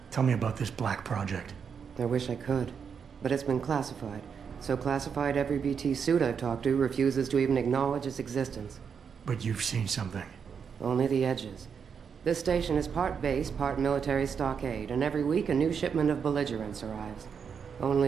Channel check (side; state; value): left; quieter; 6.7 dB